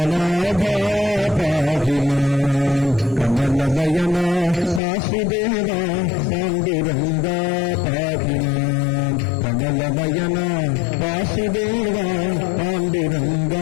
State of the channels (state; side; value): drops out; right; at 4.8 s